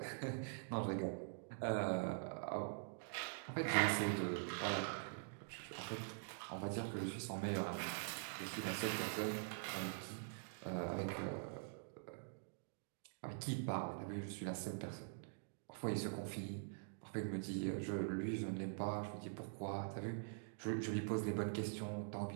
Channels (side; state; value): left; silent; digital silence